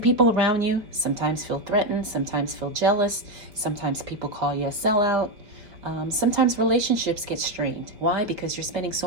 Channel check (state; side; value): late; left; 4.5 ms